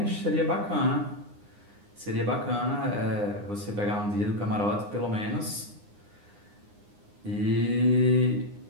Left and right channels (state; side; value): late; left; 9.8 ms